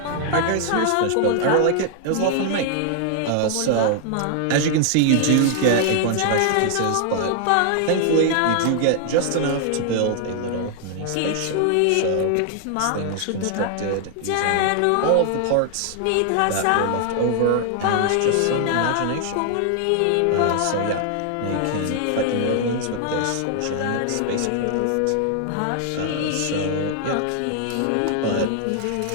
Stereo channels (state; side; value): different; both; correlation 0.00